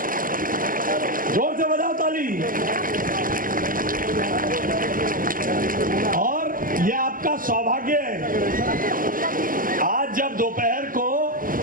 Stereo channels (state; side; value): late; left; 0.41 ms